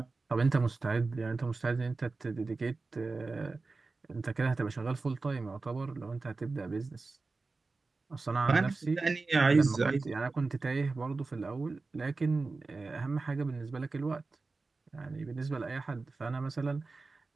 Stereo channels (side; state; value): left; quieter; 3.8 dB